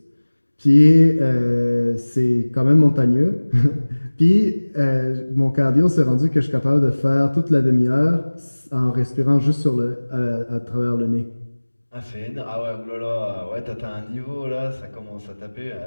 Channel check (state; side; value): inverted; both; correlation -1.00